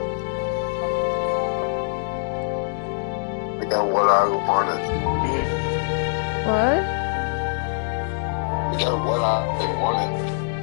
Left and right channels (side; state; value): right; silent; digital silence